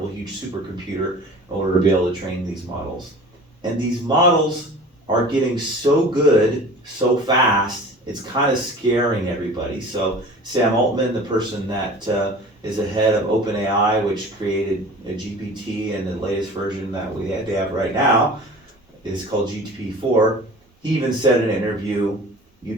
huge supercomputer in order to be able to train these models. And these models are getting so good so fast, it's kind of scaring everybody. So Sam Altman, the person that is the head of OpenAI, which created a GPT, and the latest version that they have right now is called GPT-4. He even said in an interview,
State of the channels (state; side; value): normal; both; correlation 0.41